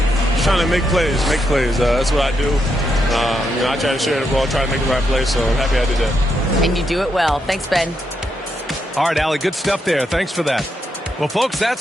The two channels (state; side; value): normal; both; correlation 0.81